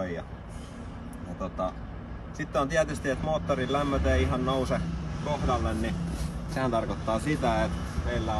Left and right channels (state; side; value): identical; both; correlation 1.00